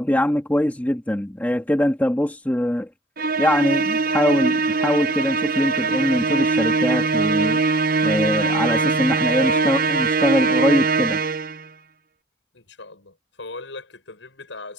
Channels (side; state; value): both; normal; correlation 0.50